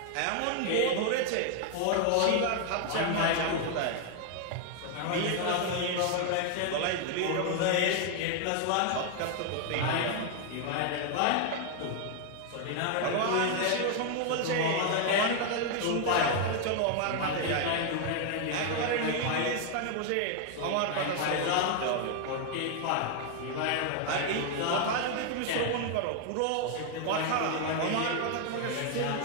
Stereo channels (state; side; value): different; both; correlation 0.00